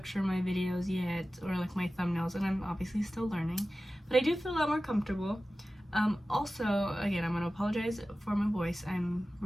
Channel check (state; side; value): normal; both; correlation 0.95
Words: of my videos yet, or like my thumbnails, and I'm obviously still learning. But I do feel a lot more comfortable. Also, again, I'm going to apologize for my voice. I'm